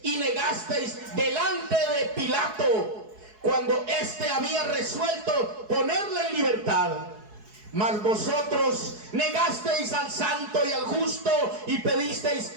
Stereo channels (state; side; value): late; left; 4.7 ms